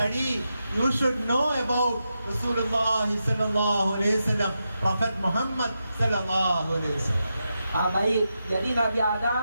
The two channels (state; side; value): inverted; both; correlation -0.87